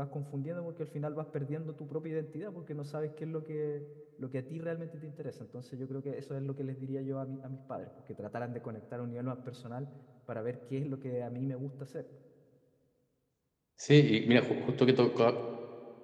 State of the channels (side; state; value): both; identical; correlation 1.00